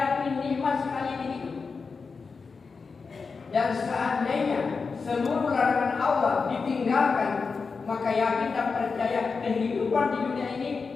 nikmat sekali ini. Dan seandainya seluruh larangan Allah ditinggalkan, maka yakin dan percaya kehidupan di dunia ini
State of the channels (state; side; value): quieter; right; 4.8 dB